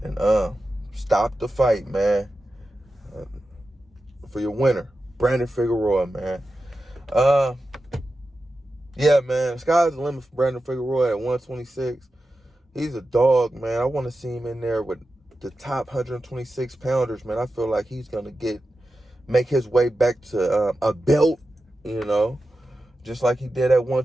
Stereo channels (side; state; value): both; normal; correlation 0.92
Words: and stopped the fight, man. For your winner, Brandon Figueroa, man. Yeah, man, sky's the limit for Brandon Figueroa at 126. He's a dog, man. I want to see him in there with the top 126 pounders, man. I feel like he's going to make his way back to a belt, just like he did at